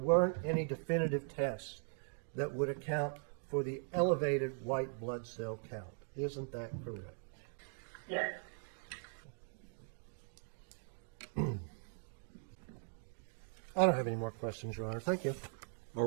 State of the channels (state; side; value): silent; left; 51 dB below the other